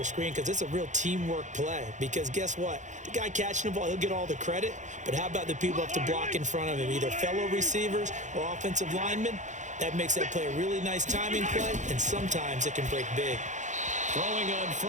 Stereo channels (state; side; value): late; left; 0.35 ms